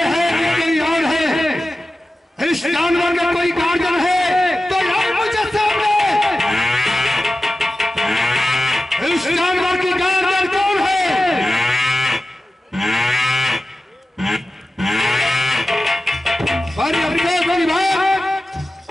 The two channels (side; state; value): both; normal; correlation 0.95